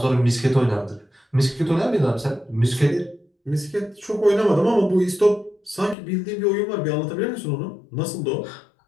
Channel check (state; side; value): drops out; right; at 6.0 s